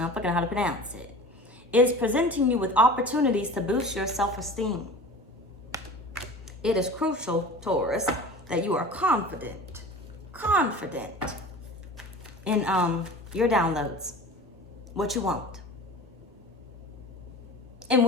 fucking know how to pronounce it. Is presenting you with opportunities to boost your self-esteem. It is crucial, Taurus, that you are confident in your downloads, what you want. And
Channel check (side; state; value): both; normal; correlation 0.38